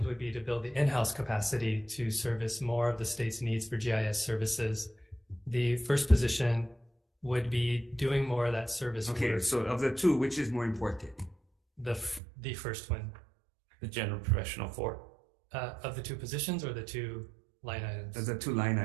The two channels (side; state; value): left; drops out; at 12.2 s